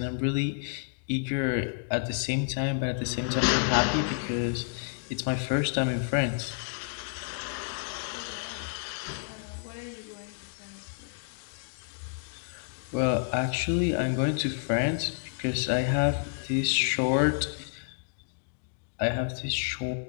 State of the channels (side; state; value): right; silent; digital silence